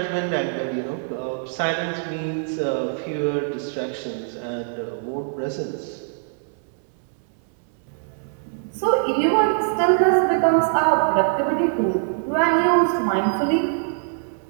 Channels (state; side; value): silent; left; 63 dB below the other